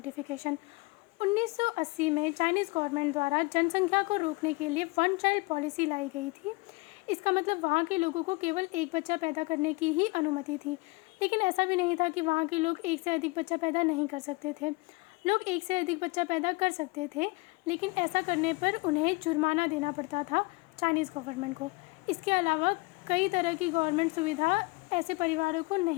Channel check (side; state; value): right; quieter; 25.9 dB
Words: 1980 में चाइनीज़ गवर्नमेंट द्वारा जनसंख्या को रोकने के लिए 1 चाइल्ड पॉलिसी लाई गई थी। इसका मतलब वहाँ के लोगों को केवल एक बच्चा पैदा करने की ही अनुमति थी। लेकिन ऐसा भी नहीं था कि वहाँ के लोग एक से अधिक बच्चा पैदा नहीं कर सकते थे। लोग एक से अधिक बच्चा पैदा कर सकते थे, लेकिन ऐसा करने पर उन्हें जुर्माना देना पड़ता था चाइनीज़ गवर्नमेंट को। इसके अलावा कई तरह की गवर्नमेंट सुविधा ऐसे परिवारों को